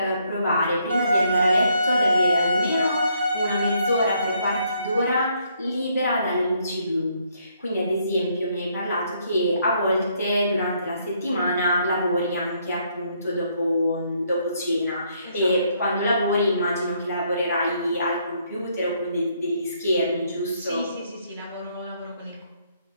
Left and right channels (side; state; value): both; inverted; correlation -0.71